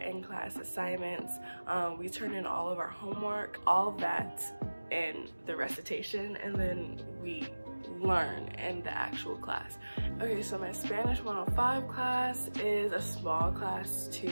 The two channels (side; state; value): both; inverted; correlation -1.00